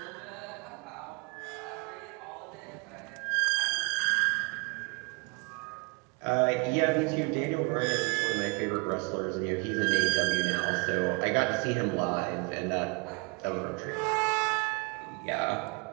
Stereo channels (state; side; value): quieter; left; 31.0 dB